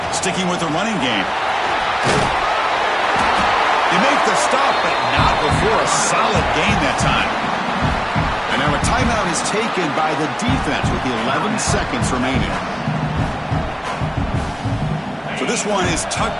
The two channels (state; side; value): identical; both; correlation 1.00